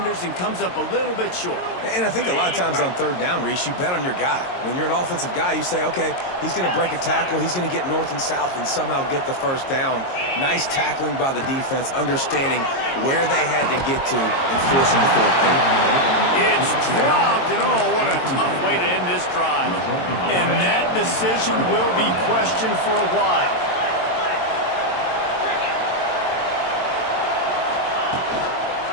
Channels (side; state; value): right; late; 22 ms